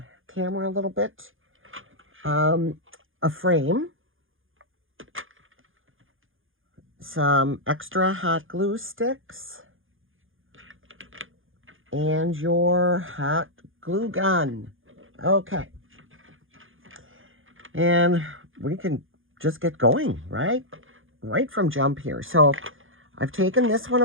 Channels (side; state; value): left; late; 0.59 ms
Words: camera a little bit. A frame, some extra hot glue sticks, and your hot glue gun. Okay. And we can just get going, right? Right from jump here. So I've taken this one